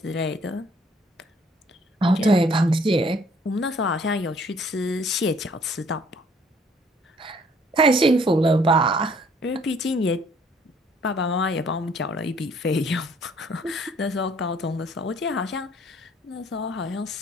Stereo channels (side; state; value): both; normal; correlation 0.61